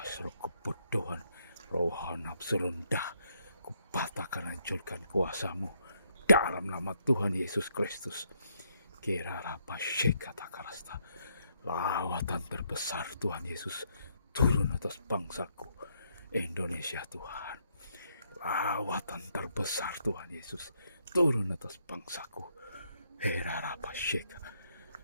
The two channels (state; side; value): inverted; both; correlation -0.74